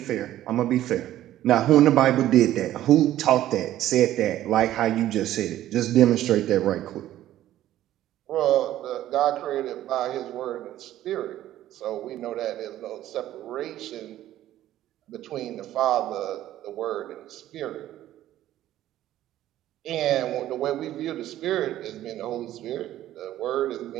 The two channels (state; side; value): quieter; left; 13.3 dB